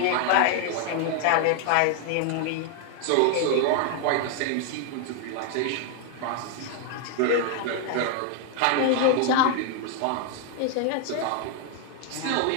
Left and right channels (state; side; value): different; both; correlation 0.00